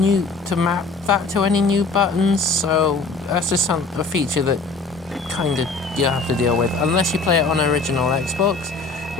to any new buttons, so that's just a feature that kind of you have to deal with unless you play it on original Xbox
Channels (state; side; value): quieter; right; 3.8 dB